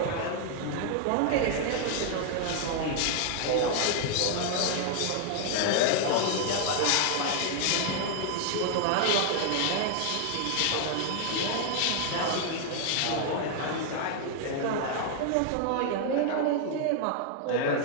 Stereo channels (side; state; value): both; different; correlation 0.00